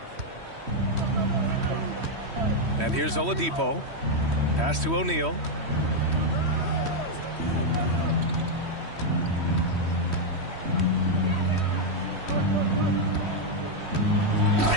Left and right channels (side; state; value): left; late; 3.1 ms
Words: And here's Oladipo. Pass to O'Neal.